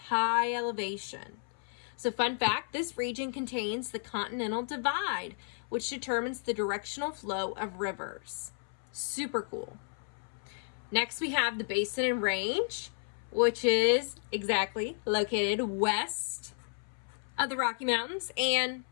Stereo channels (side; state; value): right; silent; 56 dB below the other